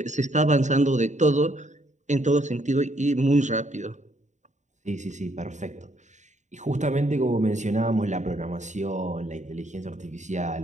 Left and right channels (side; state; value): left; late; 0.35 ms